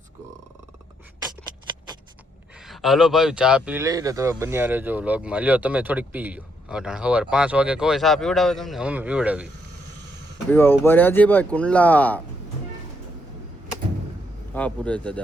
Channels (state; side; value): normal; both; correlation 0.75